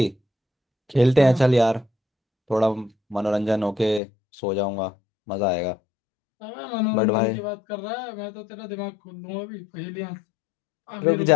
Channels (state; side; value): drops out; right; at 4.0 s